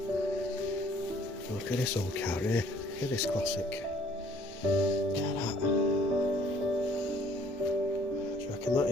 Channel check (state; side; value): normal; both; correlation 0.58